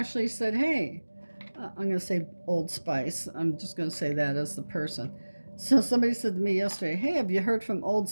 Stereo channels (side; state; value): both; inverted; correlation -1.00